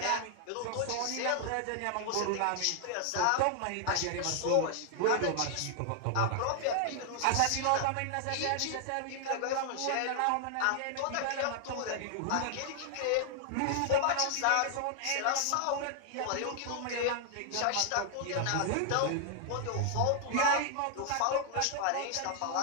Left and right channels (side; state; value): both; different; correlation 0.00